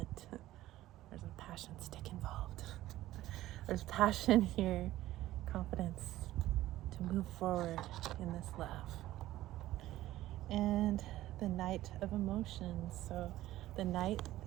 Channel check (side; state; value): left; quieter; 15.2 dB